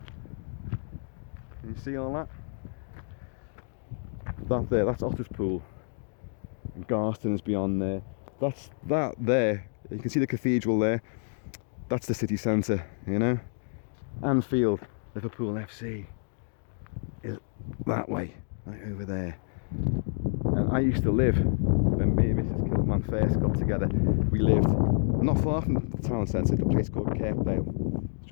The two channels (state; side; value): silent; right; digital silence